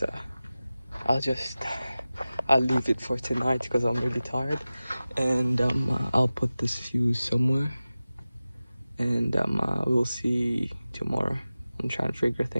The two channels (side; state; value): both; inverted; correlation -0.96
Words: leave it for tonight because I'm really tired, and I'll put this fuse somewhere, and we'll see tomorrow. I'm trying to figure